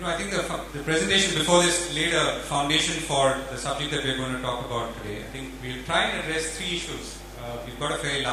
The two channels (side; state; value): both; identical; correlation 1.00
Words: I think the presentation before this laid a foundation for the subject that we're going to talk about today. I think we'll try and address 3 issues. We've got a very